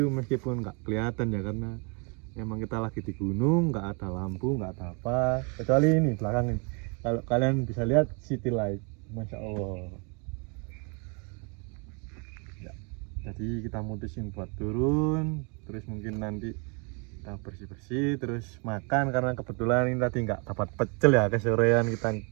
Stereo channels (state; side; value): quieter; left; 34.0 dB